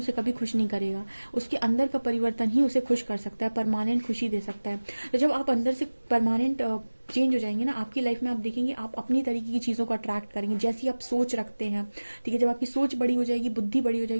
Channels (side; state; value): both; inverted; correlation -1.00